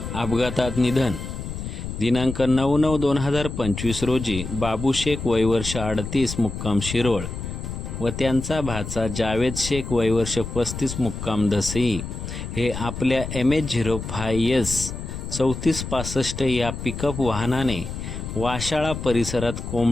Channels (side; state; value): left; noise; rumble, 7 dB below the sound